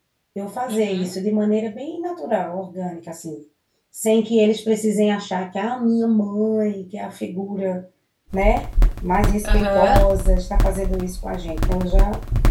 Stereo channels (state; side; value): identical; both; correlation 1.00